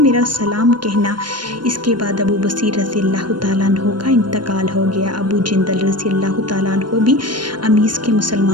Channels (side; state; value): left; late; 0.71 ms